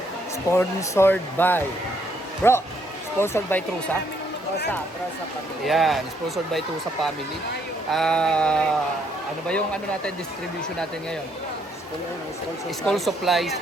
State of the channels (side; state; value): both; normal; correlation 0.71